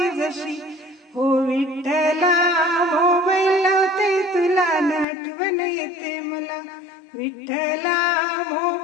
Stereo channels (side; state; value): right; drops out; at 5.1 s